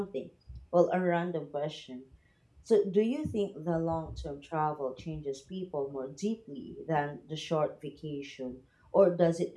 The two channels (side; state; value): both; identical; correlation 1.00